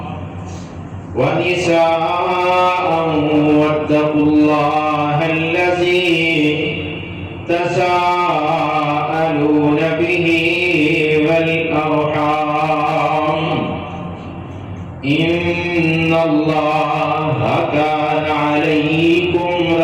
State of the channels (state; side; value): identical; both; correlation 1.00